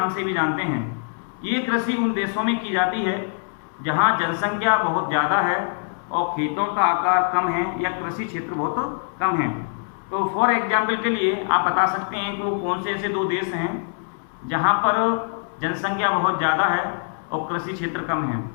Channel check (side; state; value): right; silent; digital silence